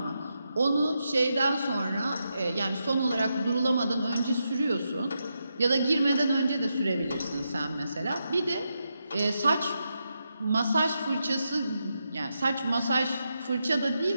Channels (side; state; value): both; inverted; correlation -0.85